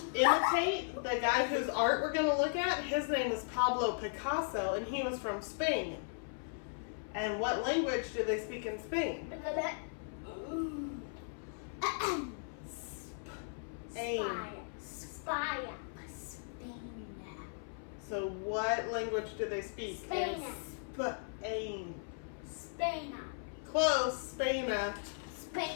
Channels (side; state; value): right; silent; 53 dB below the other